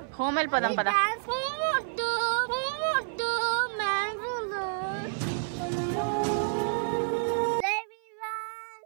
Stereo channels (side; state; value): left; silent; 56 dB below the other